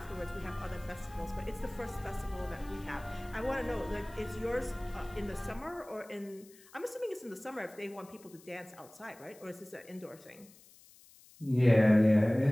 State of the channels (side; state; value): left; noise; hiss, 24 dB below the sound